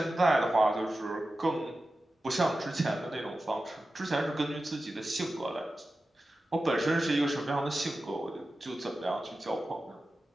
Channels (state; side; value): normal; both; correlation 0.94